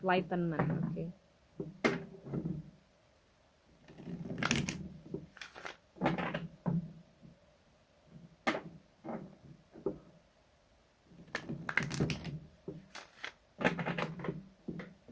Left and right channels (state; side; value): identical; both; correlation 1.00